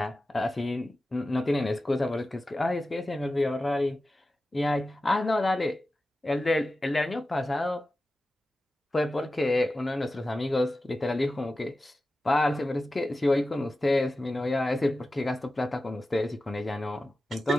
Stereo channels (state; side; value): normal; both; correlation 0.94